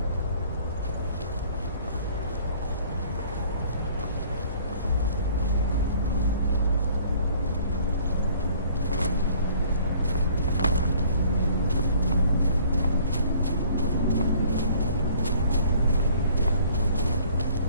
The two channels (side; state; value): both; inverted; correlation -0.55